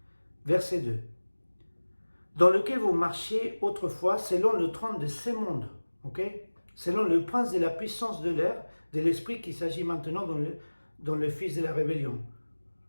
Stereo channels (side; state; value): both; inverted; correlation -1.00